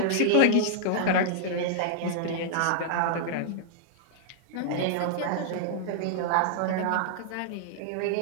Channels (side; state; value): both; different; correlation -0.01